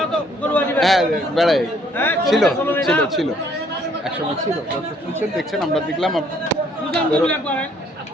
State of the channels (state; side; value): normal; both; correlation 0.64